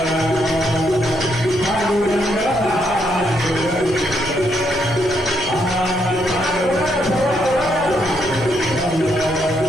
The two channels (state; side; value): noise; left; rumble, 16 dB below the sound